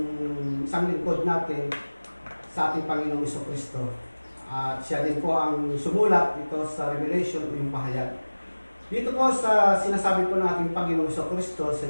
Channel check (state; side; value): inverted; both; correlation -1.00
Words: isang lingkod natin sa ating Panginoong Jesucristo. At siya din po ang sumulat ito sa Revelation o yung pahayag. Dito po sa sinasabi po nating Panginoong Jesucristo sa